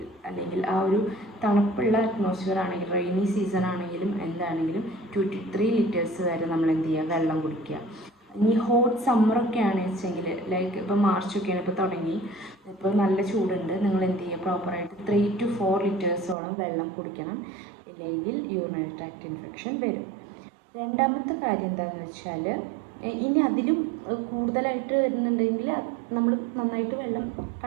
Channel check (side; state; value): left; drops out; at 16.4 s